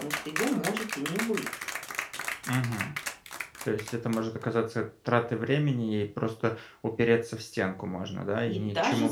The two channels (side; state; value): both; identical; correlation 1.00